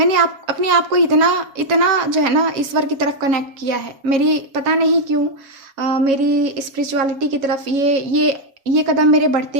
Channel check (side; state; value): left; late; 7.3 ms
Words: अपने आप को इतना इतना जो है ना ईश्वर की तरफ कनेक्ट किया है। मेरी पता नहीं क्यों मेरी स्पिरिचुअलिटी की तरफ ये कदम मेरे